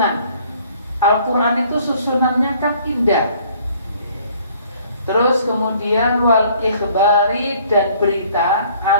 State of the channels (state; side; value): inverted; both; correlation -0.58